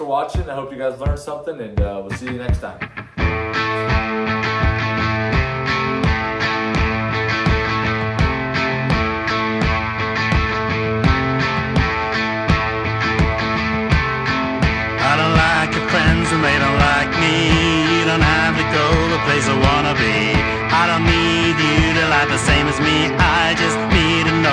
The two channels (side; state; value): both; identical; correlation 1.00